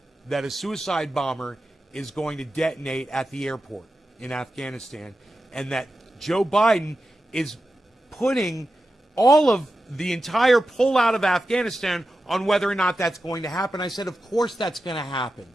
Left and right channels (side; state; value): both; normal; correlation 0.91